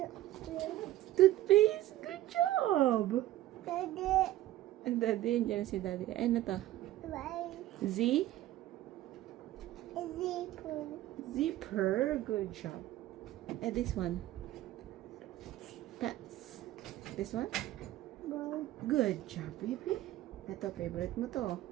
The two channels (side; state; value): left; quieter; 14.7 dB